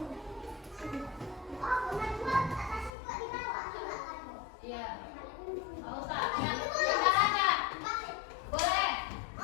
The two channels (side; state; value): right; drops out; at 2.9 s